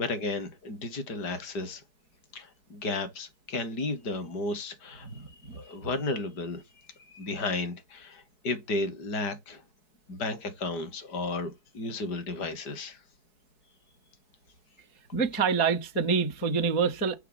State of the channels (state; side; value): late; right; 4.7 ms